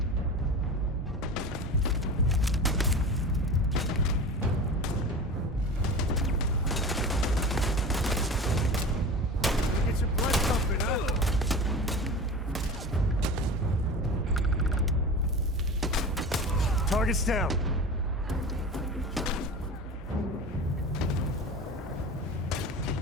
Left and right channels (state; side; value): normal; both; correlation 0.33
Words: Get your blood pumping, huh? Target's down.